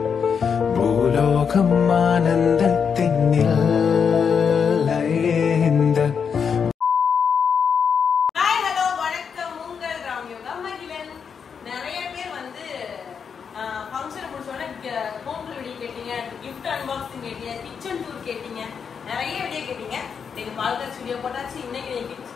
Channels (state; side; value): quieter; right; 6.6 dB